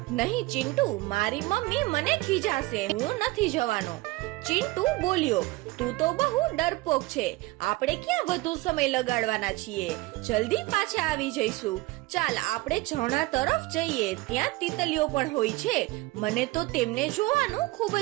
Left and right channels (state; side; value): quieter; left; 20.5 dB